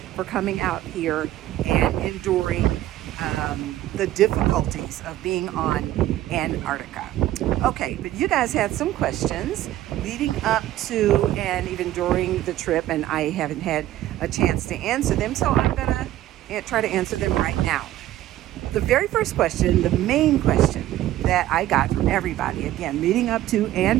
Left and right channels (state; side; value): quieter; left; 14.1 dB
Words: for coming out here and enduring the difficulties of being on Antarctica. Okay, but you guys had some questions leading up to and even during the trip, and I haven't had a chance to answer them, so I'm gonna try to answer them right now. The very first question, the main question that I got from everybody, again, leading up to